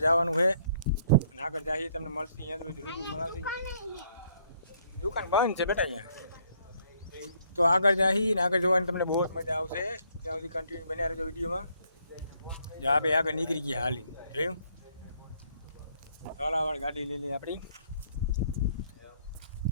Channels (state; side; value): inverted; both; correlation -0.67